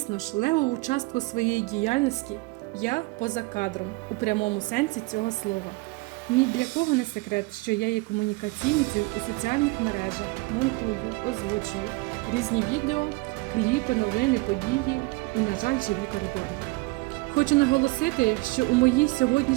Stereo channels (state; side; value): quieter; left; 24.7 dB